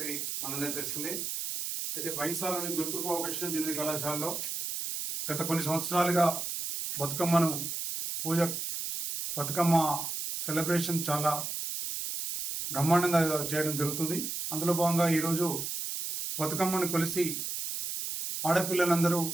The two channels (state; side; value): noise; right; hiss, 4 dB below the sound